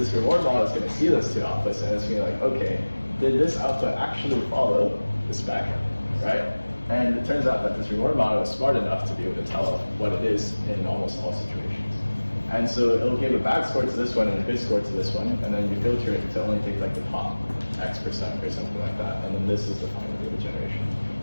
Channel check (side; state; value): both; inverted; correlation -1.00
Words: reward model is going to see those two outputs, and it's going to be like, okay, did this output actually follow the spec, right? And it turns out that this reward model is smart enough to be able to tell what it is in almost all situations. And so it'll give a bad score to this one and a good score to this one, and then you filter it to only take like the top X% or something like that, and then this is the final data generation.